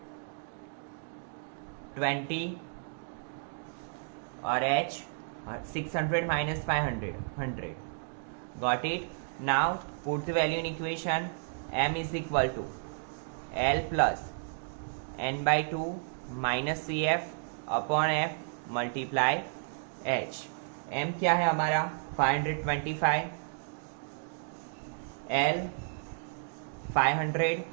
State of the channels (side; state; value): left; silent; digital silence